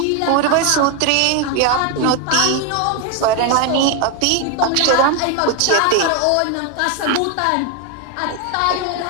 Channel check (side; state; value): both; different; correlation 0.01